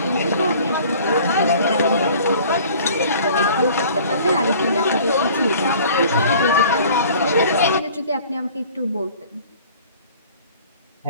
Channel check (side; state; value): both; inverted; correlation -0.49